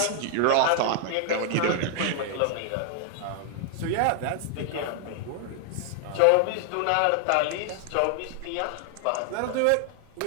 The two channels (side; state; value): both; different; correlation 0.00